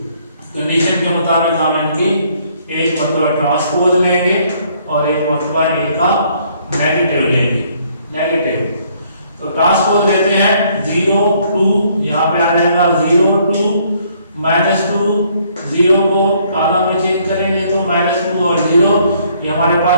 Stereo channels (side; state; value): both; inverted; correlation -0.65